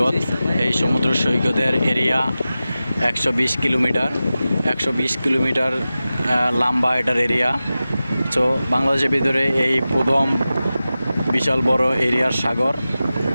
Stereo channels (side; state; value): both; inverted; correlation -0.95